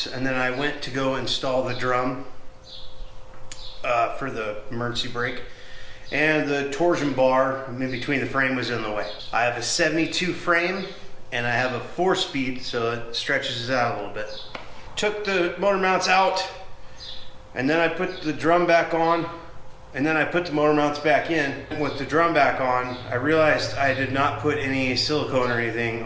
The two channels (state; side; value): identical; both; correlation 1.00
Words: and then I went to go install the drum for the emergency brake. And the torsion bar in between the frame was in the way. I have a 72 frame and I have a 4-speed, so it stretches it out a little bit. Took the motor mounts out and then I put the drum back on and then I put the motor mounts back in. With the drum back on, I realized I did not put any silicone or anything